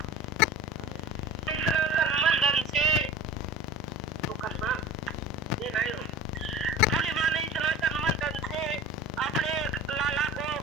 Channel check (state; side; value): normal; both; correlation 0.37